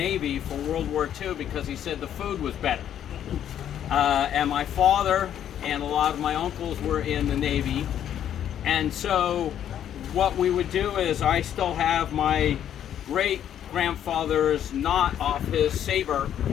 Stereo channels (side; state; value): right; quieter; 10.2 dB